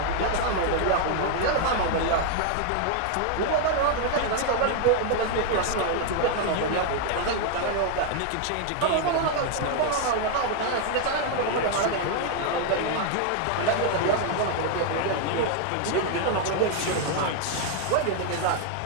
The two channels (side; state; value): both; different; correlation 0.00